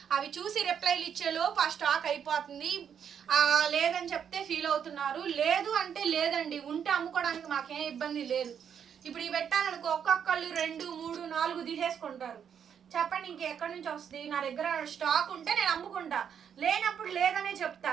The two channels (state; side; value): quieter; left; 8.0 dB